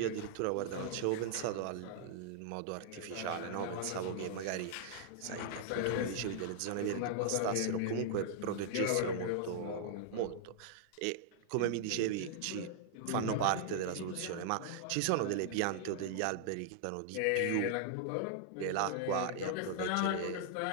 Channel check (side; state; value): both; different; correlation -0.01